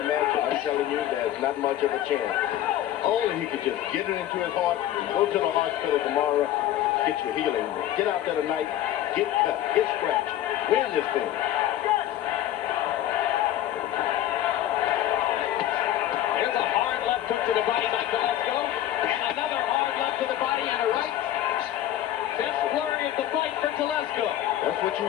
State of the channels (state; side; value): quieter; right; 12.5 dB